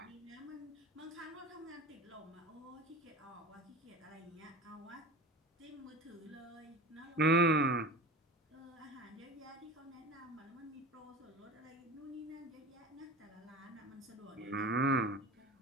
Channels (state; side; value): normal; both; correlation 0.34